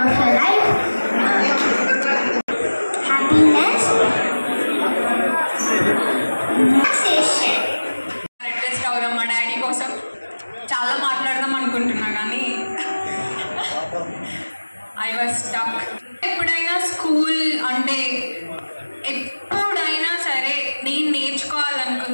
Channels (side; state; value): both; inverted; correlation -1.00